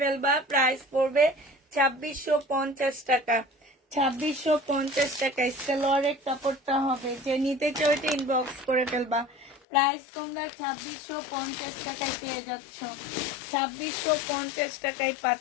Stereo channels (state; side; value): drops out; right; at 9.6 s